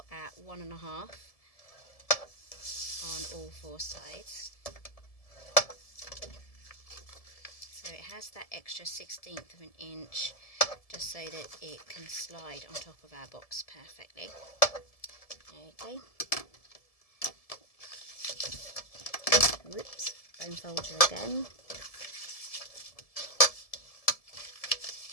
at 1.5 on all 4 sides. So it has that extra 1/16 of an inch just so that it can slide on top of our box perfectly. Okay. Whoops, bone folder again.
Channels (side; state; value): right; late; 1.7 ms